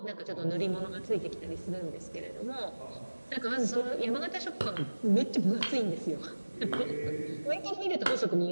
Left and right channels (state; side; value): inverted; both; correlation -1.00